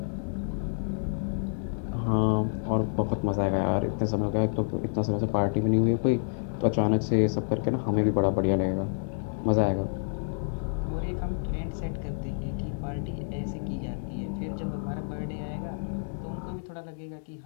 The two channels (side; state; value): right; silent; digital silence